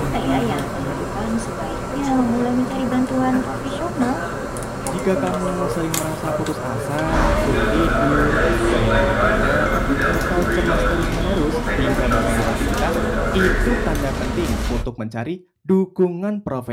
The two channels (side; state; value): both; identical; correlation 1.00